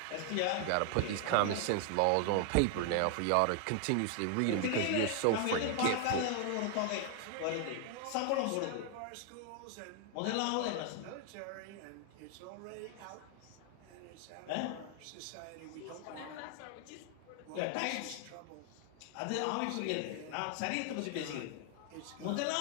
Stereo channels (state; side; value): different; both; correlation 0.00